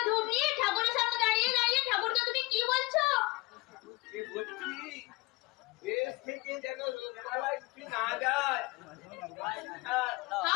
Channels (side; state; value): right; quieter; 23.8 dB